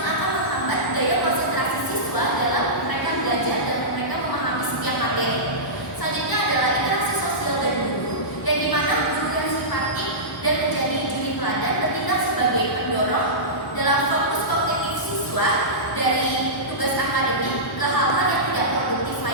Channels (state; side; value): normal; both; correlation -0.16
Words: akan menghambat daya konsentrasi siswa dalam mereka belajar dan mereka memahami setiap materi. Selanjutnya adalah interaksi sosial dan guru, yang dimana guru yang simpatik dan menjadi juri teladan bertindak sebagai pendorong dalam fokus kognitif siswa dari tugas akademik ke hal-hal yang tidak produktif